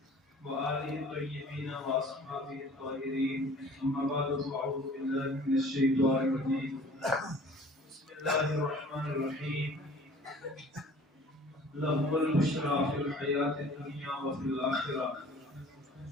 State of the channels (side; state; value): both; normal; correlation 0.49